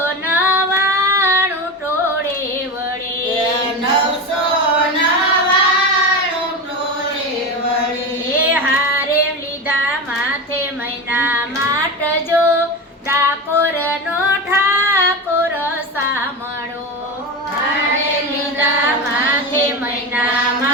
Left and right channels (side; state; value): both; normal; correlation 0.22